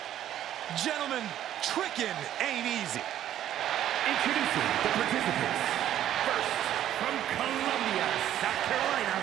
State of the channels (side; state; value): left; quieter; 11.6 dB